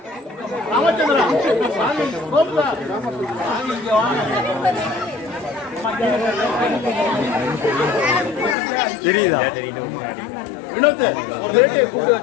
ராமச்சந்திரா கோபுரா இங்க வாங்க. தெரியுதா வினோத் ஒரு ரேடியோ கூப்பிட்டு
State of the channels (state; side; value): drops out; right; at 8.6 s